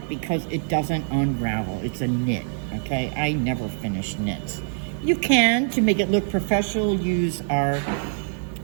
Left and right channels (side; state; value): left; silent; 62 dB below the other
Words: because it doesn't unravel. It's a knit, okay? I never finish knits. You can, to make it look professional, use our